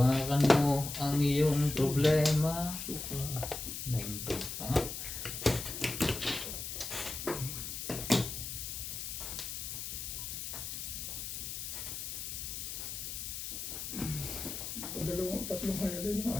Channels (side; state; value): left; noise; hiss, 6 dB below the sound